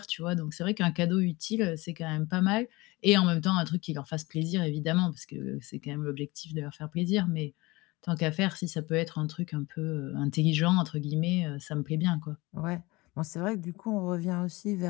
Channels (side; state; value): right; quieter; 22.6 dB